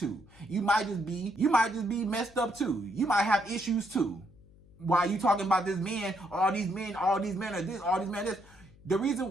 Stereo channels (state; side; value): noise; left; hum, 25 dB below the sound